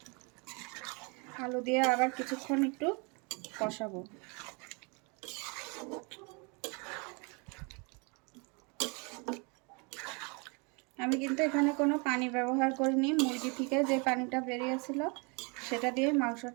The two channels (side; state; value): left; quieter; 32.0 dB